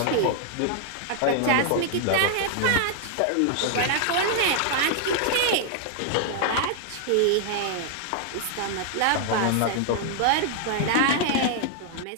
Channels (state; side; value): different; both; correlation 0.00